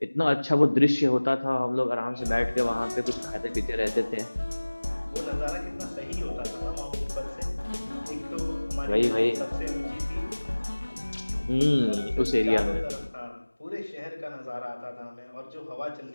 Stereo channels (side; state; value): both; inverted; correlation -1.00